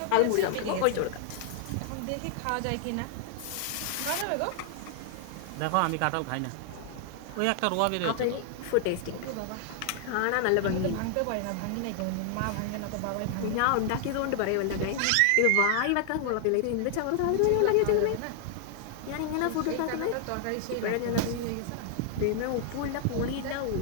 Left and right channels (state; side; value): different; both; correlation 0.00